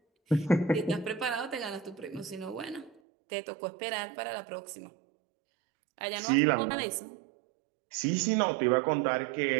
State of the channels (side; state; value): left; drops out; at 3.0 s